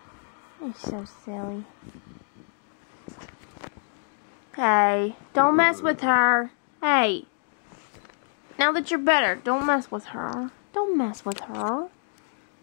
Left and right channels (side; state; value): right; silent; digital silence